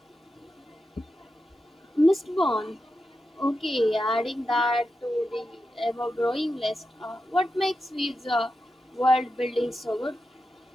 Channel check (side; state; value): both; normal; correlation 0.89